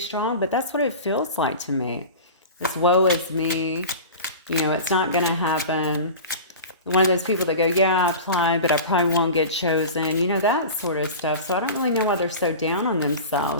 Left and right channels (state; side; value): inverted; both; correlation -0.33